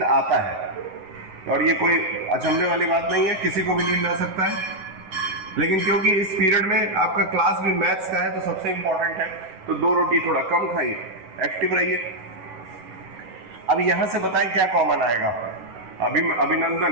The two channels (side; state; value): left; late; 11 ms